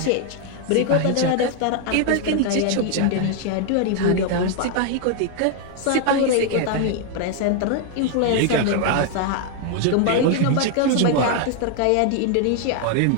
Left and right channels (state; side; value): different; both; correlation 0.00